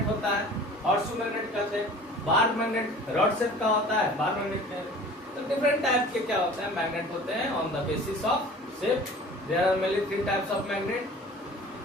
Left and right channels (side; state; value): both; normal; correlation 0.44